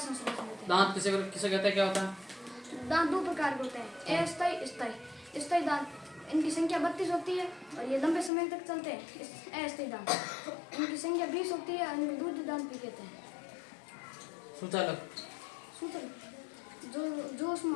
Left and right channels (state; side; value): drops out; right; at 8.3 s